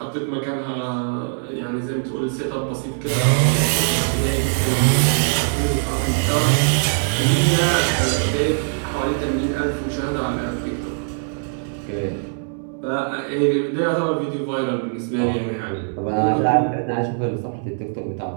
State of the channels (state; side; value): silent; left; 65 dB below the other